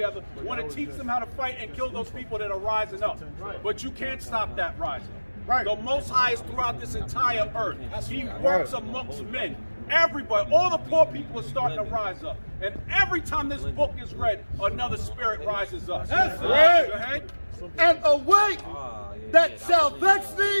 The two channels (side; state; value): both; inverted; correlation -1.00